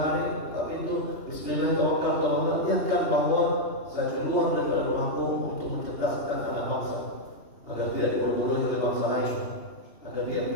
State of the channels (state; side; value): late; right; 2.8 ms